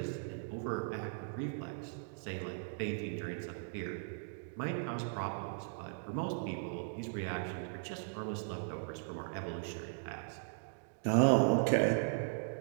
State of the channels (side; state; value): left; silent; digital silence